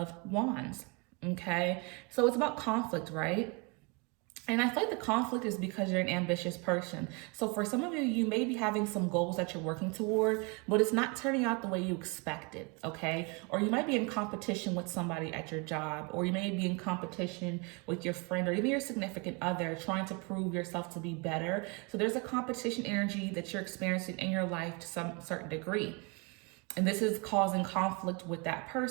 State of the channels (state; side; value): quieter; left; 31.1 dB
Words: Wands. Okay, so it's about conflict, right? And I feel like the conflict is because you're an ambitious person. So for some of you, you may be having some goals that you're working toward, but it's not turning out the way you expected, okay? Or you might be in competition with somebody at your job, or you may be in competition with your friend, or even your significant other, trying to prove yourself to be better. So there's a competition energy that you're experiencing in your life to some certain degree. And this is causing conflict with that